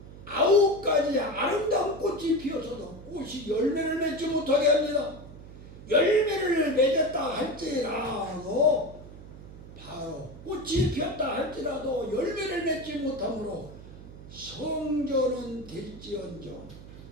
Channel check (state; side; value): noise; right; hum, 16 dB below the sound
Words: 9가지 아름다운 꽃이 피어서도 꽃이 열매를 맺지 못하게 합니다. 열매를 맺었다 할지라도 바로 꽃이 피었다 할지라도 열매를 맺지 못하므로 성전은 될지언정